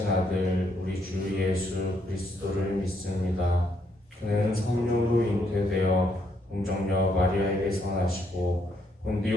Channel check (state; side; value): normal; both; correlation 0.73